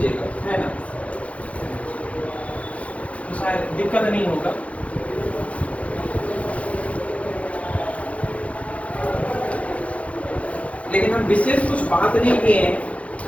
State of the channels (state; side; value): late; right; 0.064 ms